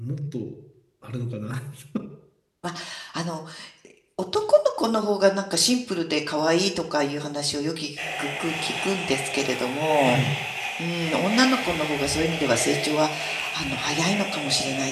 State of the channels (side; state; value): both; identical; correlation 1.00